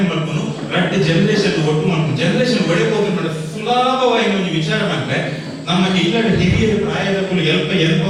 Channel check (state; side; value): identical; both; correlation 1.00